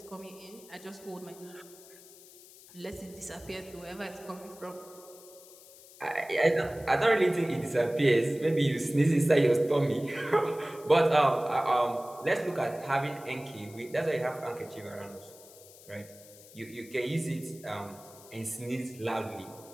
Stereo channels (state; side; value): noise; left; hiss, 21 dB below the sound